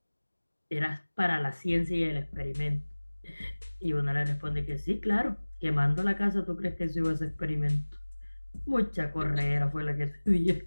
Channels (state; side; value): inverted; both; correlation -1.00